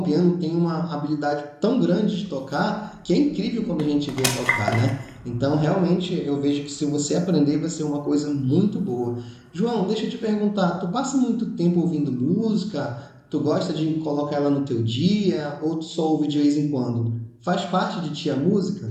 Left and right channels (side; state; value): both; identical; correlation 1.00